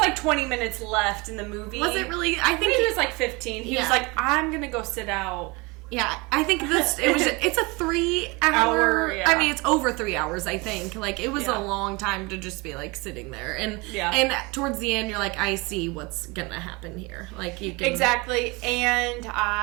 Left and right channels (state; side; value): quieter; left; 26.1 dB